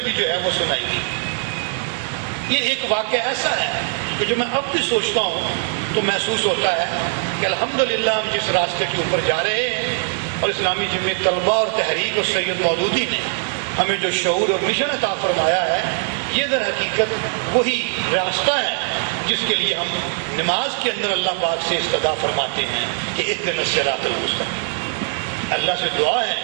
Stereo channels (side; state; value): left; silent; 65 dB below the other